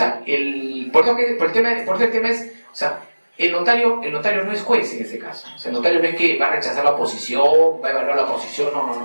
por eso el tema es, o sea, el notario no es juez en ese caso. O sea, el notario no es que va a rechazar la oposición, va a evaluar la oposición,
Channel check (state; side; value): inverted; both; correlation -1.00